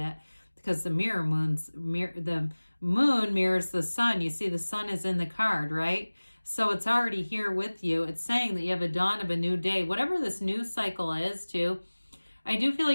because the moon mirrors the sun. You see the sun is in the card, right? So it's already here with you. It's saying that you have a dawn of a new day. Whatever this news cycle is too, I do feel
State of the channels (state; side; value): inverted; both; correlation -1.00